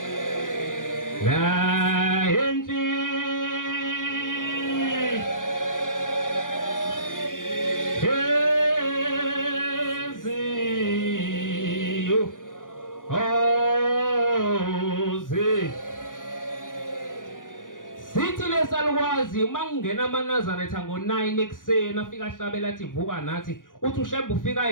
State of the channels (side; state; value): right; late; 0.88 ms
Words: La enti Salwazi mangena amaNazaretha ngo9 ekseni afika ahlabela athi vuka nathi uthi uShembe